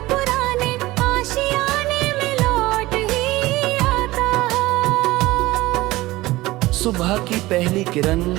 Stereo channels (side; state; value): left; quieter; 18.8 dB